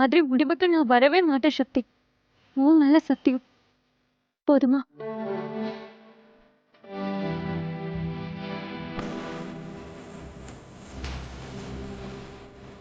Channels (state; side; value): identical; both; correlation 1.00